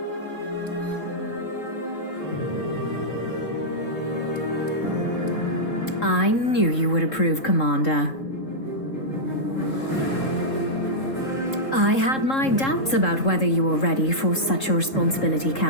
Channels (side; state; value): right; late; 3.7 ms